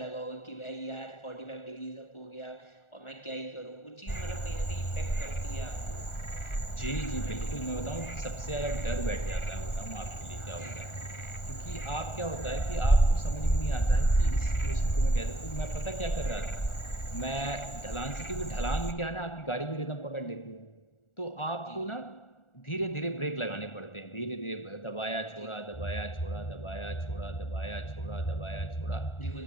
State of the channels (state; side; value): late; right; 1.4 ms